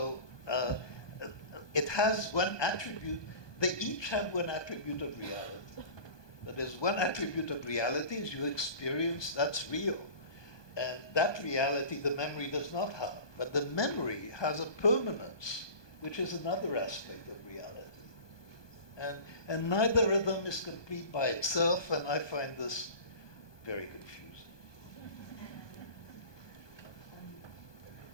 it has one attribute, they each have one attribute of reality. That is, one attribute of reality is you experience, that's real. And that reality the memory does not have. But the memory has a permanence, which is another aspect of reality. And neither of them is complete by itself, and I find this very confusing.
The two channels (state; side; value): late; right; 1.2 ms